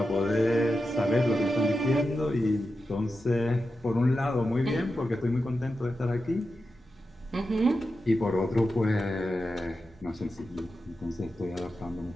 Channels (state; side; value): normal; both; correlation 0.90